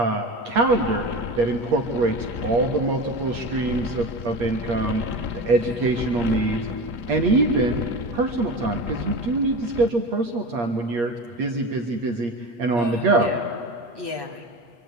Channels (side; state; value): left; late; 8.5 ms